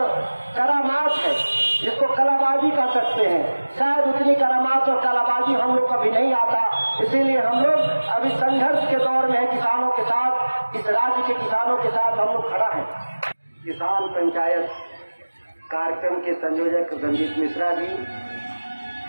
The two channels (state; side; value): inverted; both; correlation -1.00